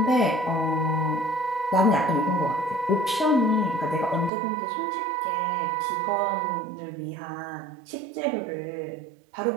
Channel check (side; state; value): left; drops out; at 4.3 s